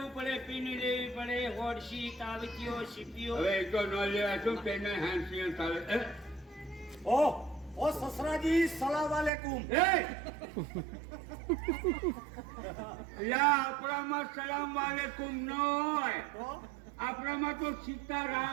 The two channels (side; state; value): left; drops out; at 9.3 s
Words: પડે, પીની લેવી પડે, હોડસી, તાવતીઓ, સીપીઓ. હવે એ તો ન લેવાય શું તેને હાંસી ચાલે. ઓ સસરાજી, સલામ વાલેકુમ. આપણામાં સલામ વાલેકુમ ન હોય, આપણામાં તો